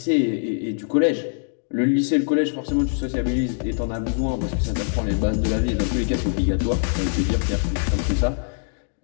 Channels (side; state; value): right; silent; digital silence